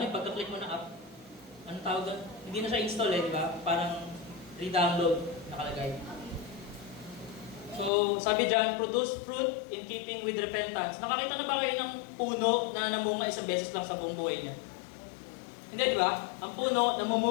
pagka-click mo na app, anong tawag doon? Hindi na siya install eh, di ba? Parang re-download nakalagay. So, sabi dyan, produce fruit in keeping with repentance. Nakakita na ba kayo ng puno na namunga isang beses lang sa buong buhay niya? Hindi, di ba? Ang puno,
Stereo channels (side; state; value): right; drops out; at 7.9 s